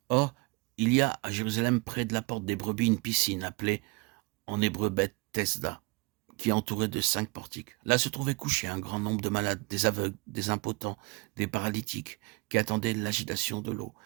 Or, il y a à Jérusalem, près de la porte des brebis, une piscine appelée en hébreu Beth-Tesda, qui est entourée de 5 portiques. Là se trouvait couché un grand nombre de malades, des aveugles, des impotents, des paralytiques, qui attendaient l'agitation de l'eau,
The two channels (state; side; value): quieter; left; 26.8 dB